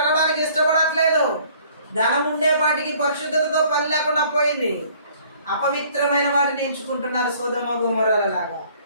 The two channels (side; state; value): both; inverted; correlation -0.57